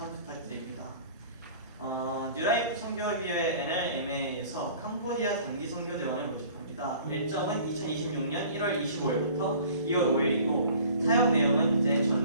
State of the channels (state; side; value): inverted; both; correlation -0.48